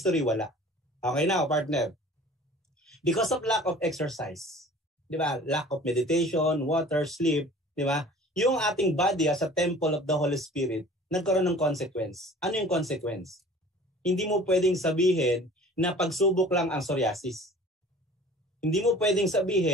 wala. Okay now, partner. Because of lack of exercise, di ba? Lack of meditation, water, sleep, di ba? Yung ating body as a temple of the Holy Spirit, nagkaroon ng consequence. Ano yung consequence? Hindi mo pwedeng sabihin na pagsubok lang ang psoriasis. Hindi mo pwedeng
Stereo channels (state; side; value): normal; both; correlation 0.46